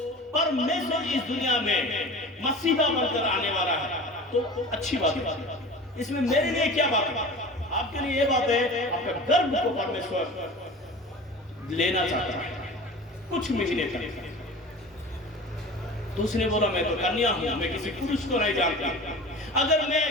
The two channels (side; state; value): both; normal; correlation 0.37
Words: परमेश्वर इस दुनिया में मसीहा बनकर आने वाला है, तो अच्छी बात है। इसमें मेरे लिए क्या बात है? आपके लिए ये बात है, आपका गर्भ को परमेश्वर लेना चाहता है कुछ महीने तक। तो उसने बोला, मैं तो कन्या हूं, मैं किसी पुरुष को नहीं जानता। अगर मैं